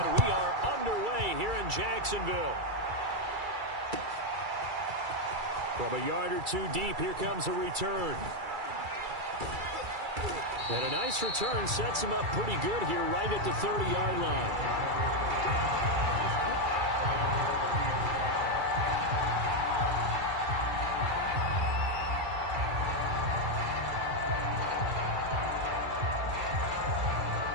we are underway here in Jacksonville. From a yard or two deep, here comes a return. And a nice return sets him up pretty good here right at the 30-yard line.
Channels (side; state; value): left; late; 2.3 ms